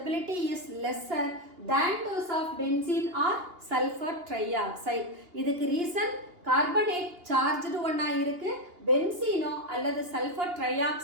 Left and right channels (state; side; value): late; left; 2.8 ms